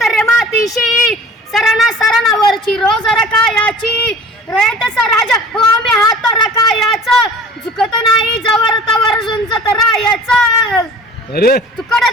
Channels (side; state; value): both; normal; correlation 0.44